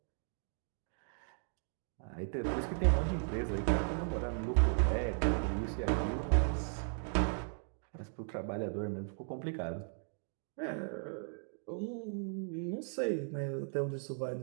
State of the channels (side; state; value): left; silent; 53 dB below the other